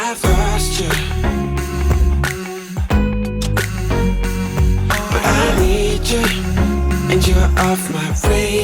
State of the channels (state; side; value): identical; both; correlation 1.00